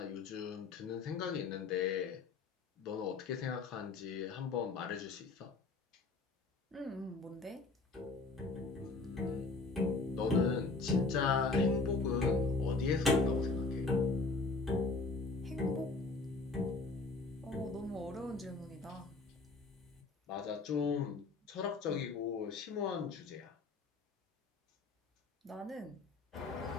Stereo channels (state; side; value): quieter; right; 3.8 dB